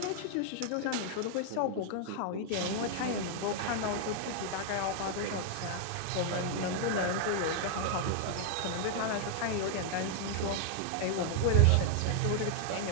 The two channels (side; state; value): both; different; correlation -0.01